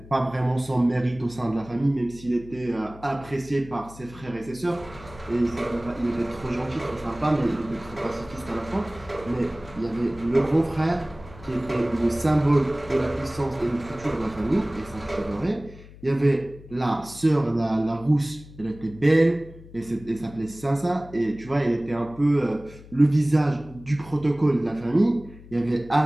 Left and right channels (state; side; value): noise; left; hum, 19 dB below the sound